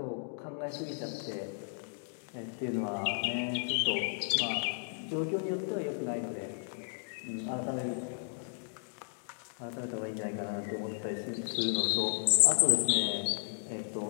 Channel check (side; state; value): right; silent; digital silence